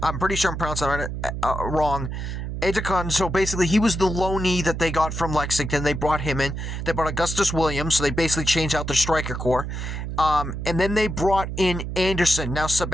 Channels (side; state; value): right; noise; hum, 5 dB below the sound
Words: I'm pretty sure I'm pronouncing it wrong, Edekun. So basically, he was the loanee that they got from Lexington. They brought him in. They brought Augustus Williams, so they basically changed out their striker core. And then they brought in Anderson. Now,